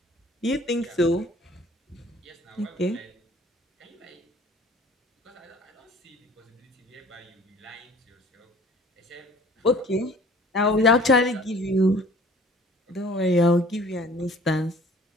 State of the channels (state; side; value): normal; both; correlation 0.51